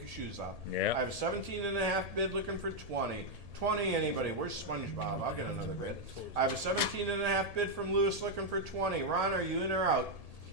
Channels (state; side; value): late; left; 1.7 ms